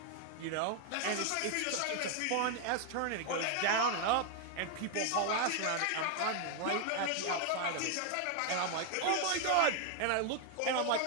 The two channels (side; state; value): both; different; correlation 0.00